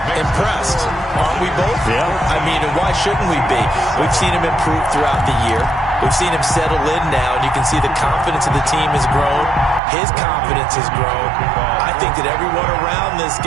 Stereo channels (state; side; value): drops out; left; at 9.8 s